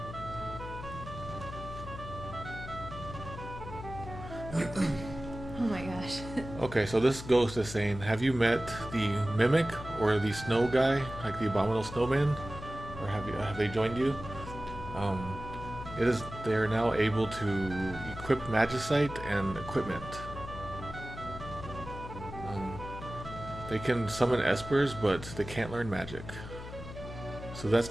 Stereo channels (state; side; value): noise; left; hum, 11 dB below the sound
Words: Oh my gosh. Okay, so this ghost is saying, have you met the Mimic or the Snow guy, like the Abominable Snowman? Or have they joined you? They are now able to equip Magicite and equipment. They can summon Espers, but they can't learn magic. So